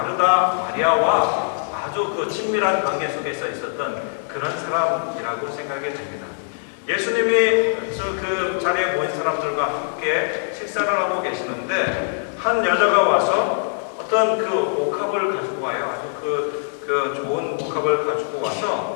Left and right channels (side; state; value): right; silent; digital silence